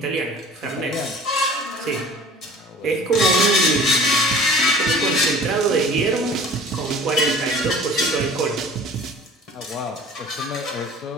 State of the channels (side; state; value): both; normal; correlation 0.45